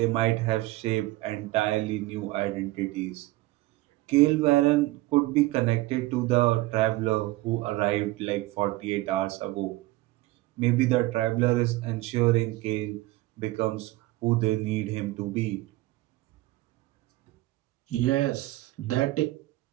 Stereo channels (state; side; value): quieter; left; 18.9 dB